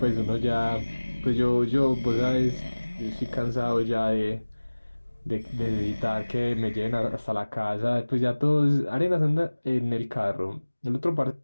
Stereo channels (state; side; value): inverted; both; correlation -1.00